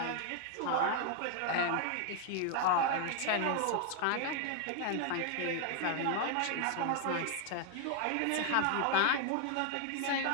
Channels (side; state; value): both; different; correlation 0.00